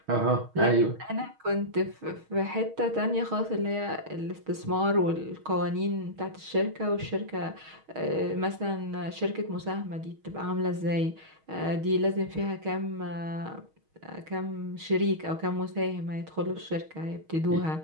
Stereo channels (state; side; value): late; left; 6.4 ms